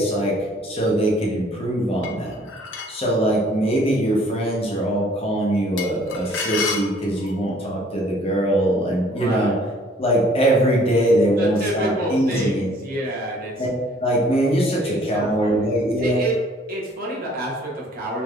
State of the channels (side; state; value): both; normal; correlation 0.57